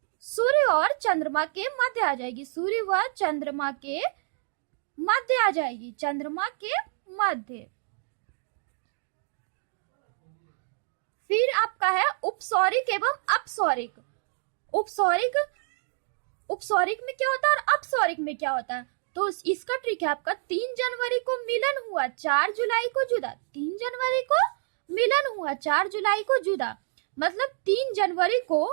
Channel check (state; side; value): silent; left; digital silence